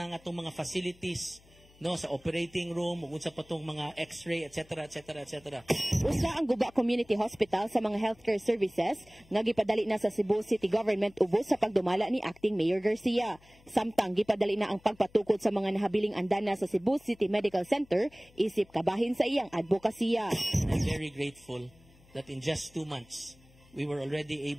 nga atong mga facilities no sa operating room ug unsa pa tong mga x-ray etc. Usa ang Guba Community Hospital sa mga healthcare services nga gipadali na sa Cebu City Government ubos sa pagdumala ni Acting Mayor Garcia. Samtang gipadali na ang pagpatukod sa mga nahabiling andana sa Cebu City Medical Center isip kabahin sa iyang advokasya. I'm very grateful that in just 2 months we were already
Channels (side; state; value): left; noise; hum, 27 dB below the sound